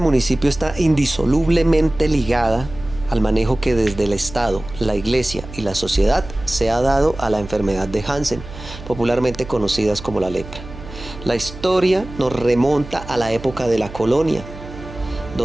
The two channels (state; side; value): noise; right; hum, 14 dB below the sound